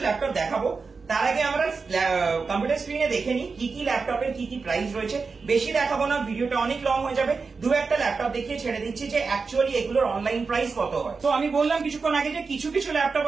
ল্যাপটপ দেখাবো, তার আগে আমরা কম্পিউটার স্ক্রিনে দেখে নিই কি কি ল্যাপটপের কি কি প্রাইস রয়েছে। বেশি দেখাবো না, ভিডিওটা অনেক লং হয়ে যাবে, দু একটা ল্যাপটপ দেখিয়ে ছেড়ে দিচ্ছি যে অ্যাকচুয়ালি এগুলোর অনলাইন প্রাইস কত হয়। তো আমি বললাম কিছুক্ষণ আগে যে কিছু কিছু ল্যাপটপ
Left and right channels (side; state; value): left; quieter; 4.7 dB